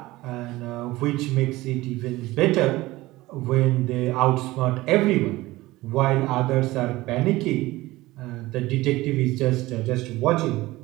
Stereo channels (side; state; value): left; quieter; 18.7 dB